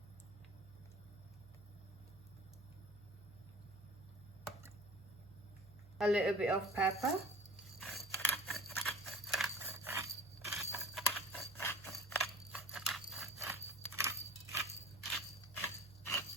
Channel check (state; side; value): noise; right; hum, 20 dB below the sound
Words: A little bit of pepper.